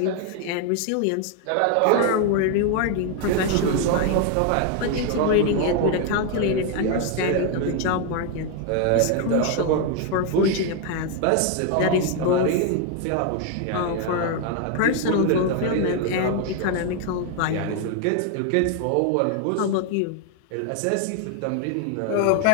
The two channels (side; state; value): both; different; correlation 0.01